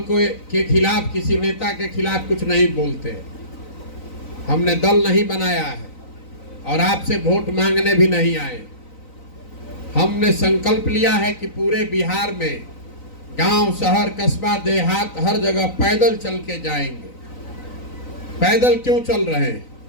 के खिलाफ, किसी नेता के खिलाफ कुछ नहीं बोलते। हमने दल नहीं बनाया है और आपसे वोट मांगने भी नहीं आए। हमने संकल्प लिया है कि पूरे बिहार में गांव, शहर, कस्बा, देहात, हर जगह पैदल चल के जाएंगे। पैदल क्यों चल रहे हैं?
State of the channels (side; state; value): right; late; 3.9 ms